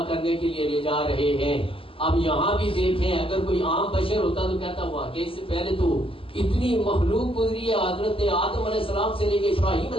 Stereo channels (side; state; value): right; late; 0.26 ms